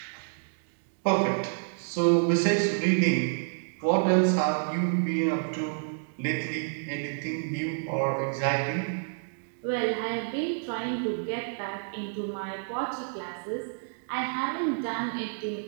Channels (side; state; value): left; silent; digital silence